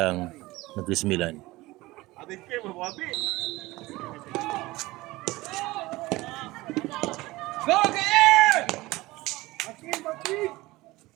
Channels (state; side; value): quieter; left; 19.7 dB